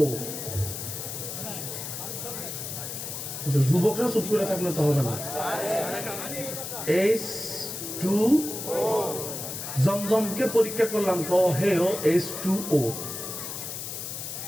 যুবকরা চুপ করে থাকলে তো হবে না। H2O। জমজমকে পরীক্ষা করলাম, হেও H2O।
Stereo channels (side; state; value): left; noise; hiss, 7 dB below the sound